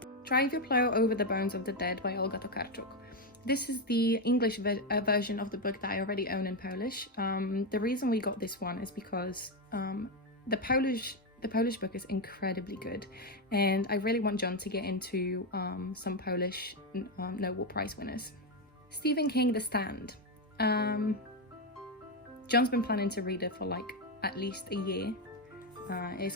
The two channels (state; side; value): normal; both; correlation 0.07